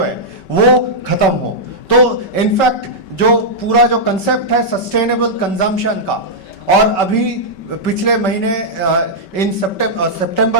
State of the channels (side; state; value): right; late; 5.2 ms